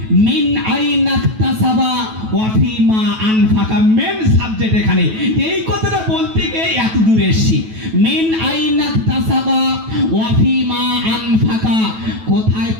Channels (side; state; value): left; late; 9.2 ms